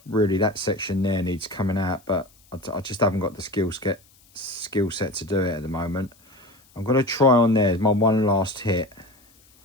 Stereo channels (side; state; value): left; noise; hiss, 30 dB below the sound